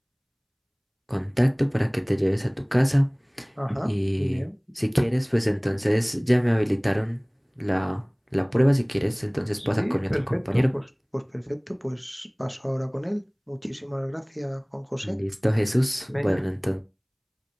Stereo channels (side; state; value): both; identical; correlation 1.00